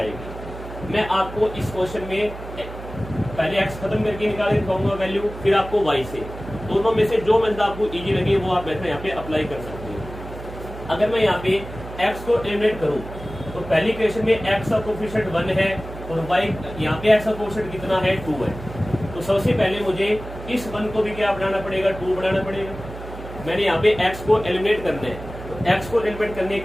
मैं आपको इस क्वेश्चन में पहले x खत्म करके निकाल दिखाऊंगा वैल्यू, फिर आपको y से, दोनों में से जो मेथड आपको इजी लगे वो आप मेथड यहाँ पे अप्लाई कर सकते हैं। अगर मैं यहाँ पे x को एलिमिनेट करूँ तो पहली इक्वेशन में x का कोफिशिएंट 1 है और y यहाँ पे x का कोफिशिएंट कितना है 2 है। तो सबसे पहले मुझे इस 1 को भी क्या बनाना पड़ेगा 2 बनाना पड़ेगा। मैंने यहाँ पे x को एलिमिनेट करना है, तो x को एलिमिनेट करने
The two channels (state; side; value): noise; right; hum, 12 dB below the sound